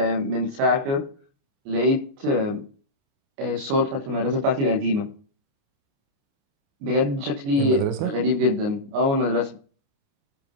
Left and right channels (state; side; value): late; left; 29 ms